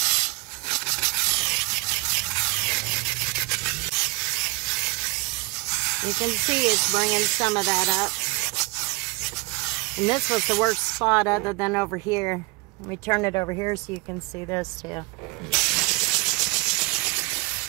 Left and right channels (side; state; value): left; quieter; 25.7 dB